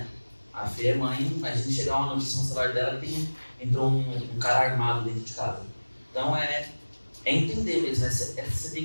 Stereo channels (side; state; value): both; inverted; correlation -1.00